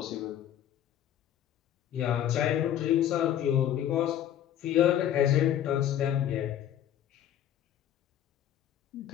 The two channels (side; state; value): right; quieter; 10.9 dB